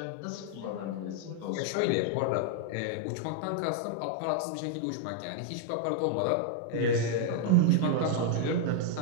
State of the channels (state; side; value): different; both; correlation 0.00